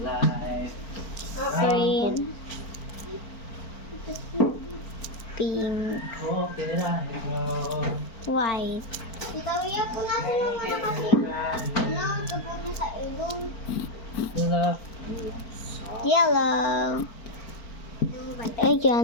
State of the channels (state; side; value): late; right; 4.4 ms